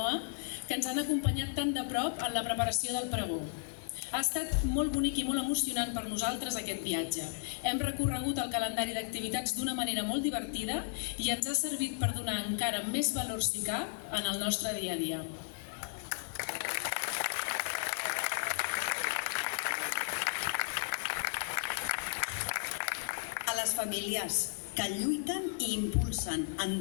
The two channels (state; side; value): silent; right; 55 dB below the other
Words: que ens han acompanyat tan de prop en la preparació del pregó. Ha estat molt bonic i molt emocionant per nosaltres aquest viatge. Hem recorregut el calendari d'activitats d'una manera molt divertida i ens ha servit per donar encara més valor, si cap, en el nostre dia a dia. A les famílies que lluiten i impulsen